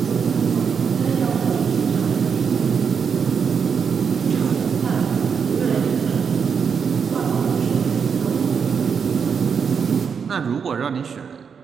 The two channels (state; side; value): quieter; left; 6.5 dB